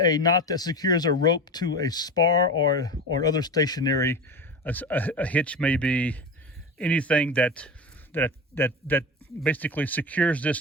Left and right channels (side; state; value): both; normal; correlation 0.27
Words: knot that secures a rope to a spar or other stationary. A hitch may be anything that basically secures